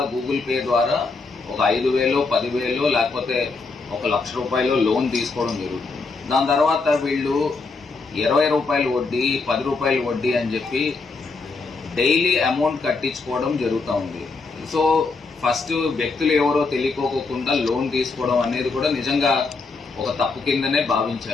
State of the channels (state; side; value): quieter; right; 4.1 dB